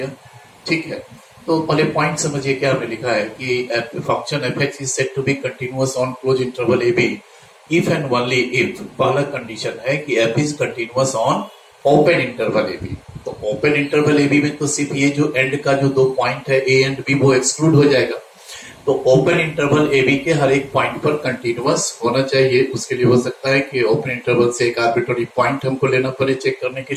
ठीक है, तो पहले पॉइंट समझिए क्या हमने लिखा है कि function F x is said to be continuous on close interval A B if and only if. पहला कंडीशन है कि F is continuous on open interval A B. तो ओपन इंटरवल ए बी में तो सिर्फ ये जो एंड का जो दो पॉइंट है ए एंड बी वो एक्सक्लूड हो जाएगा। तो ओपन इंटरवल ए बी के हर एक पॉइंट पर कंटिन्यूअस होना चाहिए। उसके लिए हो सकता है कि ओपन इंटरवल से एक आर्बिट्ररी पॉइंट हमको लेना पड़े चेक करने के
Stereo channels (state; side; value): identical; both; correlation 1.00